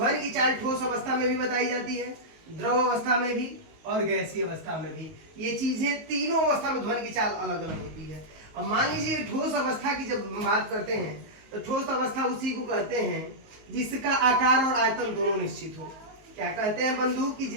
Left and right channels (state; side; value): late; left; 19 ms